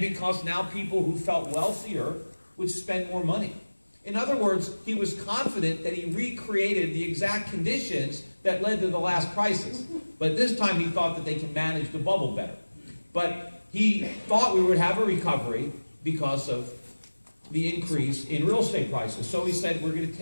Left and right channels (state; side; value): inverted; both; correlation -1.00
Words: now people who felt wealthier would spend more money. In other words, he was confident that he recreated the exact conditions that led to the last crisis. But this time he thought that they can manage the bubble better. But he thought we would have a recovery because of the increase in real estate prices. So he said, we're going to